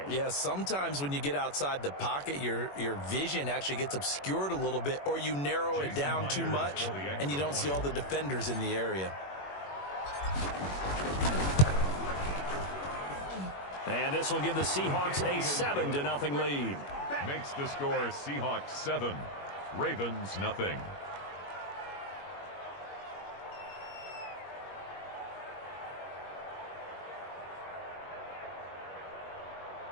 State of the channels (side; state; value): right; late; 21 ms